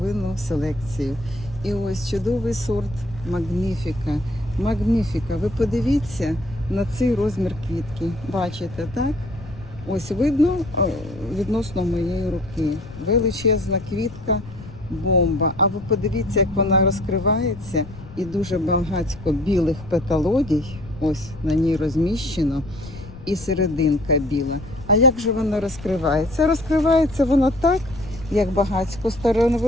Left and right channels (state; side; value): noise; left; rumble, 16 dB below the sound